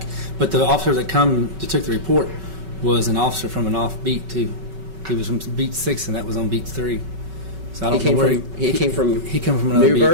But the officer that took the report was an officer from an off beat too. He was from beat 6 and that was on beat 3. So I don't know where he came from he came from another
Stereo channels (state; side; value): late; left; 5.3 ms